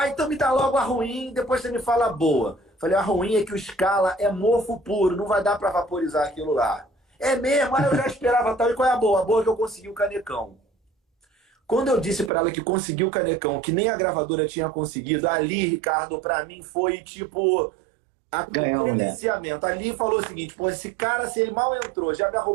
Então me dá logo a ruim, depois você me fala a boa. Falei, a ruim é que o Scala é mofo puro, não vai dar para vaporizar aquilo lá. É mesmo? Aí eu já esperava tal. E qual é a boa? A boa é que eu consegui o Canecão. Quando eu disse para ela que conseguiu o Canecão, que nem a gravadora tinha conseguido, ali, Ricardo, para mim foi tipo Ganhou, o mulher. iniciamento. Ali falou o seguinte, pô, esse cara, se ele mal entrou, já me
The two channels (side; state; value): left; drops out; at 12.3 s